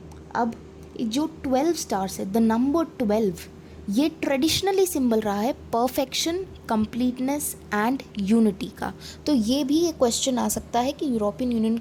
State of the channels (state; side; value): identical; both; correlation 1.00